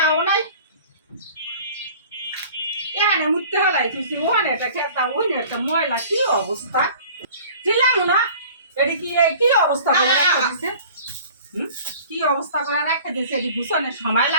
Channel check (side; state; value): both; inverted; correlation -0.46